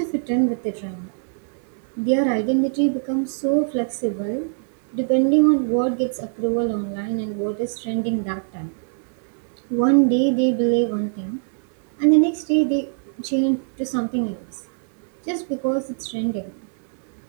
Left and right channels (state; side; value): silent; left; 63 dB below the other